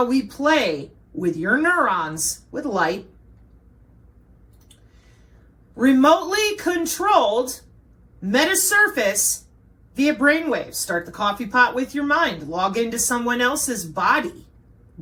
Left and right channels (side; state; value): both; identical; correlation 1.00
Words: we play with your neurons with light. Remotely controlled metasurface via brainwaves. Start the coffee pot with your mind. Log into someone else's body.